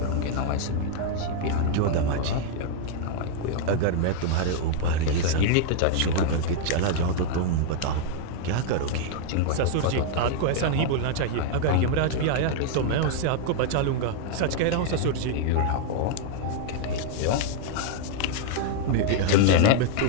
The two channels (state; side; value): different; both; correlation -0.01